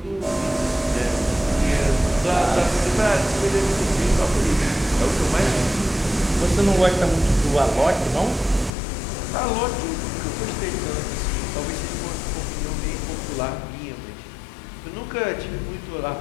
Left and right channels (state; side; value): drops out; right; at 8.7 s